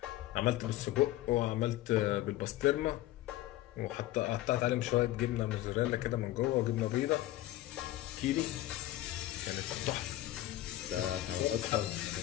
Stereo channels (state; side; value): quieter; right; 15.4 dB